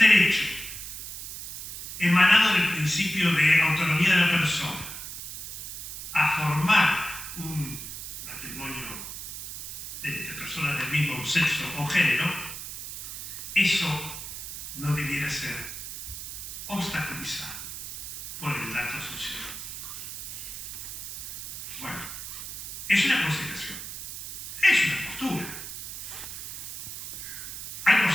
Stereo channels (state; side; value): noise; right; hiss, 8 dB below the sound